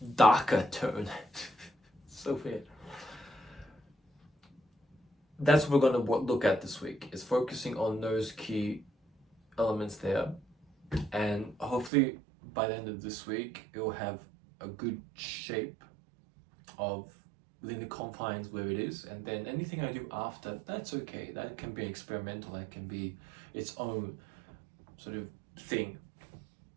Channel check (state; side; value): drops out; left; at 11.9 s